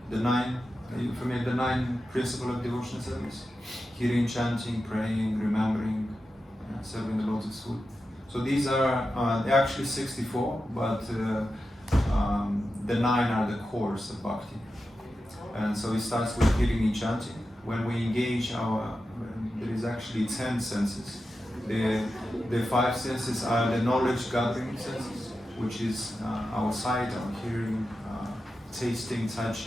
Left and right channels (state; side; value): normal; both; correlation 0.91